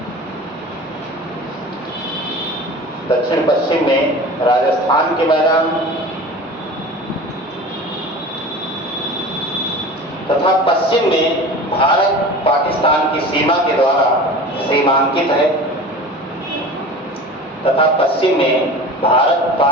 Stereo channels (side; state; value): both; normal; correlation 0.36